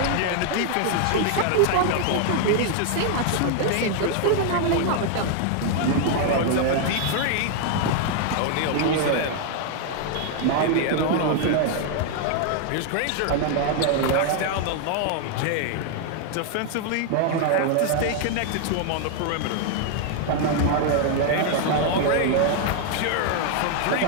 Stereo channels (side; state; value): both; different; correlation 0.00